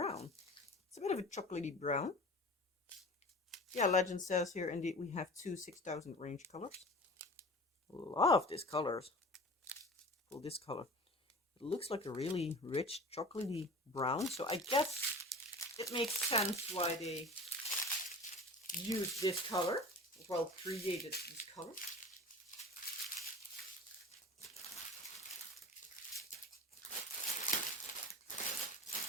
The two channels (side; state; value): both; normal; correlation 0.38